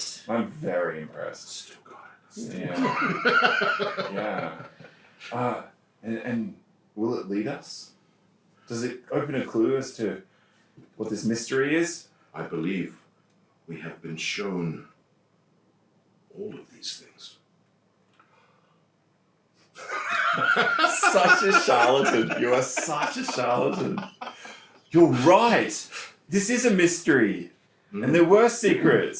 I'm very impressed. Still got it. Yeah. Yeah. And will it lead us? Does it open a clue as to what this mystery is? I believe we have been shown all of these things. Such a charlatan. You are such a charlatan. You're right. This is a mystery. And there were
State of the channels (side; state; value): both; identical; correlation 1.00